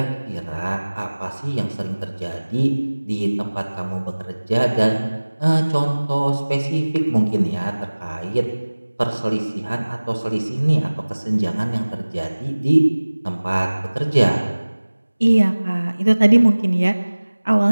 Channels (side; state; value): both; inverted; correlation -1.00